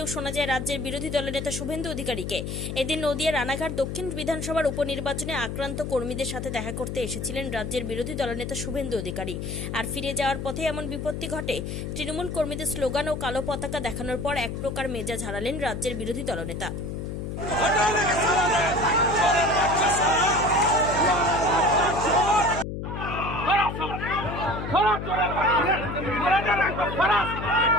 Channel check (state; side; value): noise; left; hum, 5 dB below the sound